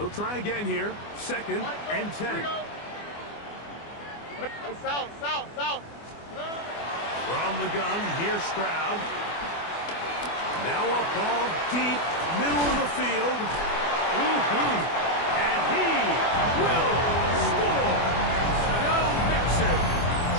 try again here. 2nd and 10. South. From the gun, here's Stroud. Now a ball deep, middle of the field. And he will score. Joe Mixon.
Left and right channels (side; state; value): right; late; 24 ms